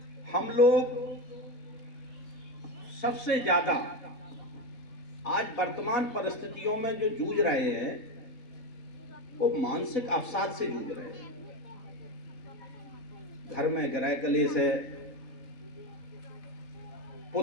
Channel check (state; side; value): late; right; 4.0 ms